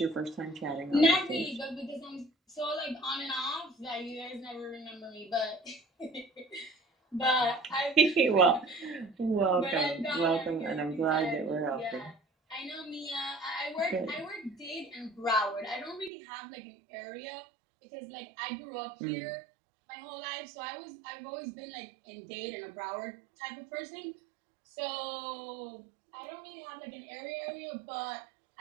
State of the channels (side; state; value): left; drops out; at 16.1 s